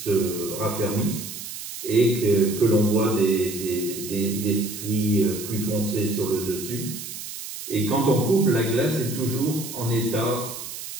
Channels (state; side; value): noise; right; hiss, 9 dB below the sound